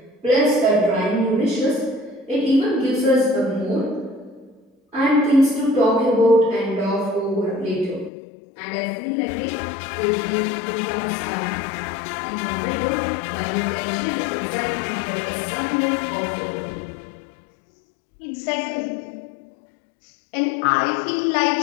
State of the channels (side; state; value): right; drops out; at 8.1 s